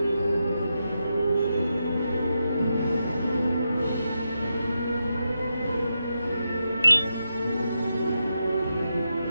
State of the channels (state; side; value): inverted; both; correlation -0.86